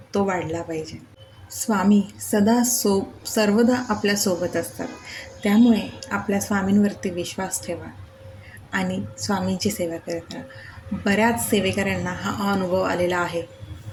तो वाढला पाहिजे. स्वामी सर्वदा आपल्यासोबत असतात. त्यामुळे आपल्या स्वामींवरती विश्वास ठेवा आणि स्वामींची सेवा करत राहा. बऱ्याच सेवेकऱ्यांना हा अनुभव आलेला आहे.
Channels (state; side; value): identical; both; correlation 1.00